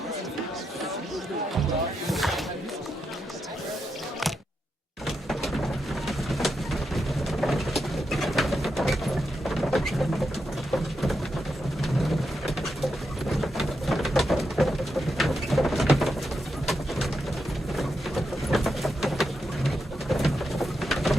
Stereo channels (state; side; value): normal; both; correlation 0.85